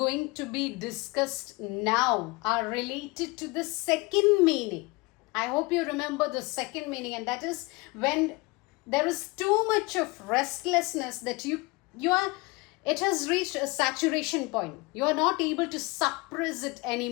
to be discussed now are related to the second meaning. I hope you remember the second meaning, and that is when there is too much of restlessness that it has reached a saturation point. You are not able to suppress it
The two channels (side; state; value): right; quieter; 25.3 dB